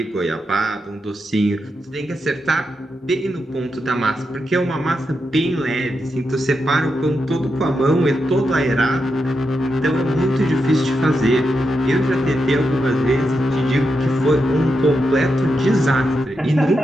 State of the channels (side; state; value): both; normal; correlation 0.86